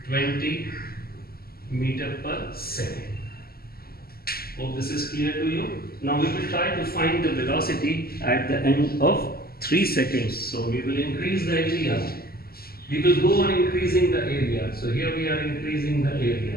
20 meter per second. Hope this is clear to you. Now we will try to find the velocity at the end of 3 seconds. So we will increase the area. We will go on increasing the area. So here we are increasing the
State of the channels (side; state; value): right; late; 0.44 ms